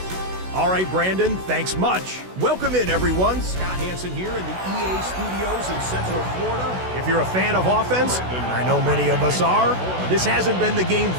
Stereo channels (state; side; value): late; left; 16 ms